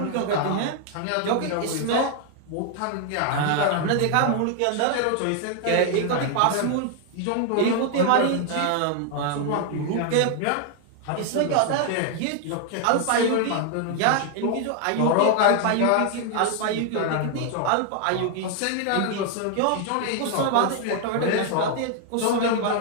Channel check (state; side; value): different; both; correlation 0.00